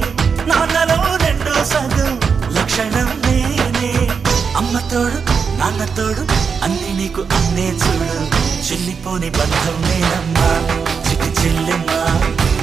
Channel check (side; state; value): left; quieter; 5.9 dB